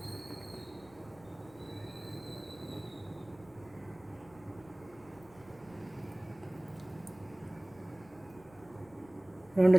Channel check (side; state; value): left; noise; rumble, 24 dB below the sound